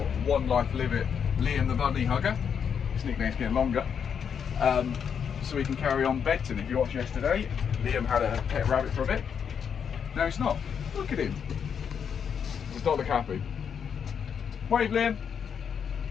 One Life Live It, Liam the Bunny Hugger. His nickname's getting longer. So we can carry on bedting. If you watched yesterday, Liam had a pet rabbit for a bit. No, he's not. Look at him. Does not look happy. Wave, Liam.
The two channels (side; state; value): right; quieter; 7.3 dB